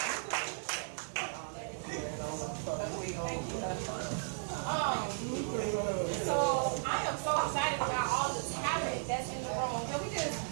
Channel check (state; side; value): silent; left; digital silence